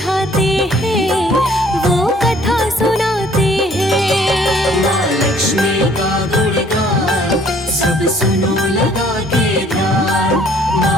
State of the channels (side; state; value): both; normal; correlation 0.58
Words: हैं, वो कथा सुनाते हैं। माँ लक्ष्मी का गुणगान सब सुनो लगा के ध्यान।